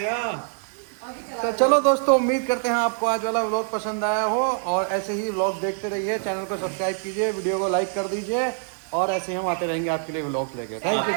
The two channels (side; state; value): left; silent; digital silence